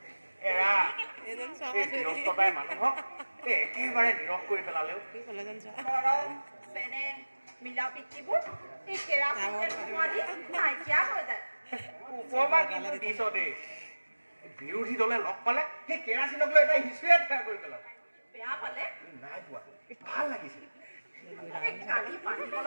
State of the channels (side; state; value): both; inverted; correlation -1.00